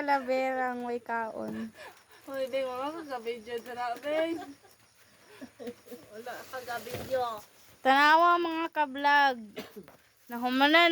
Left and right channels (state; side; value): identical; both; correlation 1.00